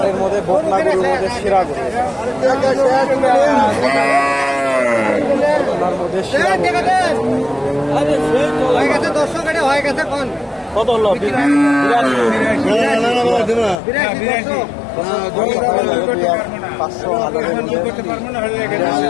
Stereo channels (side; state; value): right; drops out; at 13.8 s